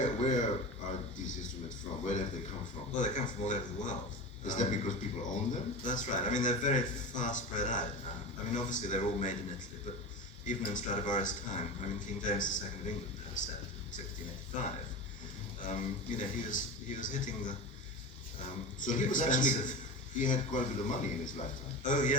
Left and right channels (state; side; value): normal; both; correlation 0.27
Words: are these instruments from? Where have they come from? Well, they come from all over the world. Is that because people own them? That's right. They're very far spread out now. Obviously they're all made in Italy, but even in Stradivari's time, King James II of England had a set in 1685. He was hitting the so he was actually, he had quite a bit of money in his lifetime. Oh